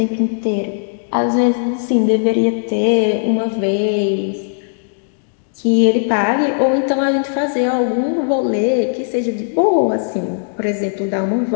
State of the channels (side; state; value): right; silent; digital silence